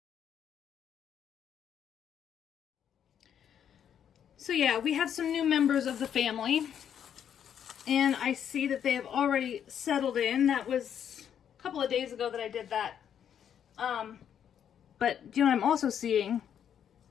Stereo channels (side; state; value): right; quieter; 8.9 dB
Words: So yeah, we have some new members of the family, and I see that they have already settled in. That was a couple of days ago that I did that. But you know what I'm also seeing